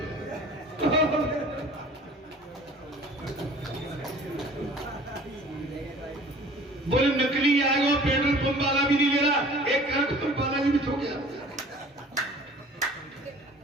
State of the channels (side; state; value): both; normal; correlation 0.47